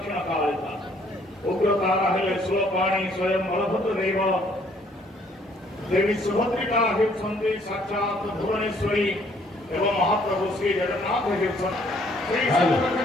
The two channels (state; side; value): normal; both; correlation 0.63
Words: कालिका उग्रतारा हेले स्वपाणी स्वयं बलभद्र देव देवी सुभद्रिका हेउछन्ति साक्षात भुवनेश्वरी एवं महाप्रभु श्री जगन्नाथ हेउछन्ति